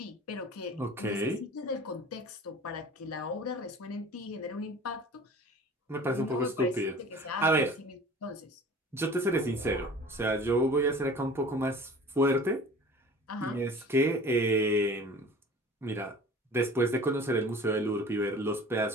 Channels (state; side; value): normal; both; correlation 0.43